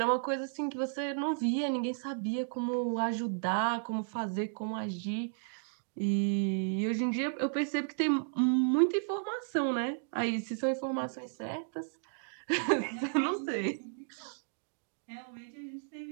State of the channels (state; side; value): silent; left; digital silence